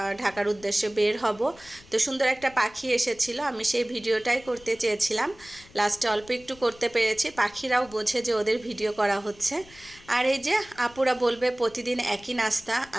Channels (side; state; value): left; noise; rumble, 23 dB below the sound